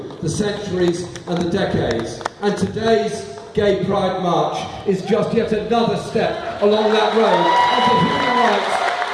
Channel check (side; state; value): both; identical; correlation 1.00